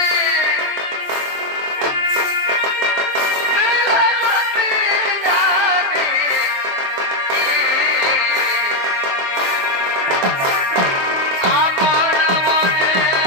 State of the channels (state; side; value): late; left; 22 ms